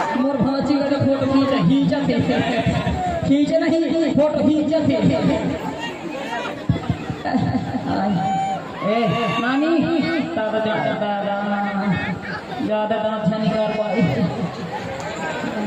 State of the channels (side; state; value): both; identical; correlation 1.00